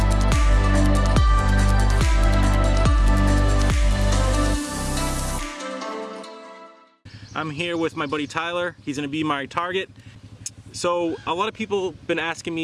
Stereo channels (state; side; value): identical; both; correlation 1.00